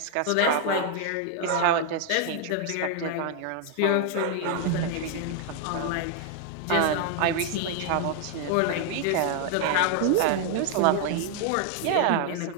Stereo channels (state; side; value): different; both; correlation 0.00